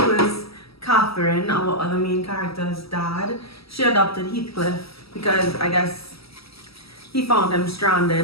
is Catherine, our other main character's dad, she adopted Heathcliff because I guess he found him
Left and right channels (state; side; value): late; right; 0.76 ms